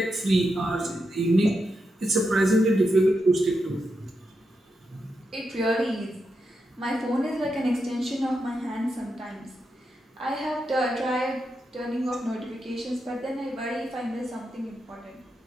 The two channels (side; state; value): both; normal; correlation 0.86